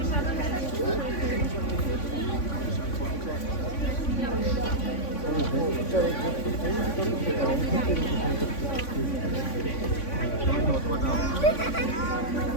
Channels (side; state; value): right; late; 3.5 ms